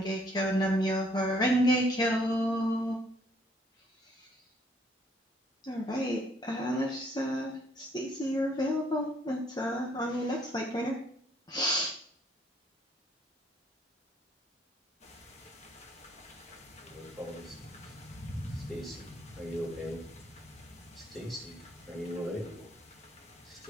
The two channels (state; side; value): normal; both; correlation 0.65